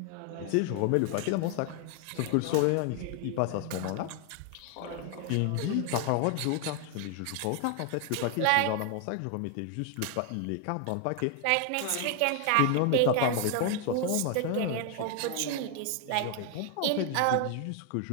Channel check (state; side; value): different; both; correlation 0.00